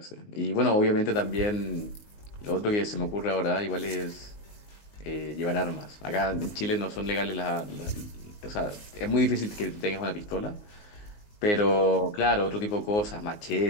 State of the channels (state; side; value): late; right; 19 ms